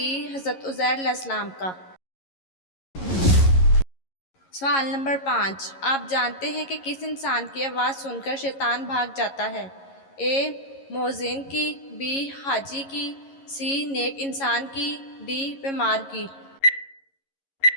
حضرت عزیر علیہ السلام کا۔ سوال نمبر 5، آپ جانتے ہیں کہ کس انسان کی آواز سن کر شیطان بھاگ جاتا ہے؟ اے مؤذن کی، بی حاجی کی، سی نیک انسان کی، ڈی بیمار کی۔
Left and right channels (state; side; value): late; right; 11 ms